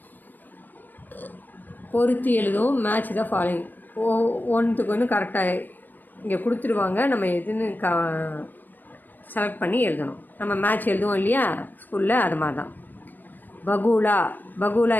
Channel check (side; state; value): right; late; 0.087 ms